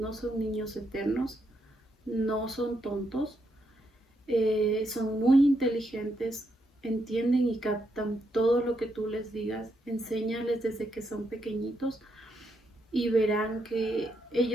son niños eternos, no son tontos, son muy inteligentes, entienden y captan todo lo que tú les digas, enséñales desde que son pequeñitos y verán que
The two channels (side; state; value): both; normal; correlation 0.79